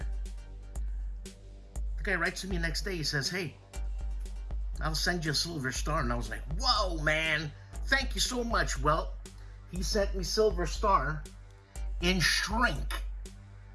The guy writes to me next day, he says, hey, I'll send you a Silver Star. And I was like, whoa, man, thank you so much. Well, he sent me Silver Star in shrink.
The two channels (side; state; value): both; identical; correlation 1.00